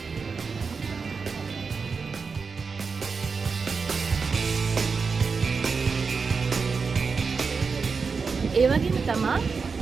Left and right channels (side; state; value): left; quieter; 5.0 dB